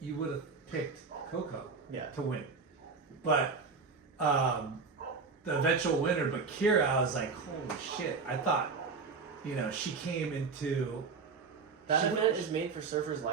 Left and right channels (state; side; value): quieter; left; 4.8 dB